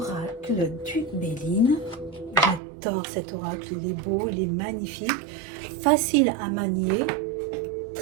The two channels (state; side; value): drops out; left; at 2.6 s